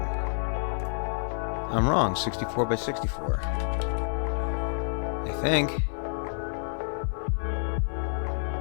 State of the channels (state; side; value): silent; right; digital silence